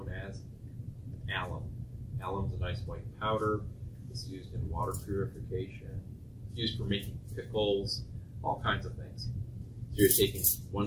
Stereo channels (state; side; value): identical; both; correlation 1.00